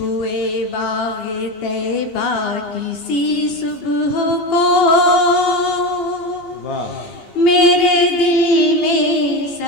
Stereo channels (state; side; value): late; left; 2.8 ms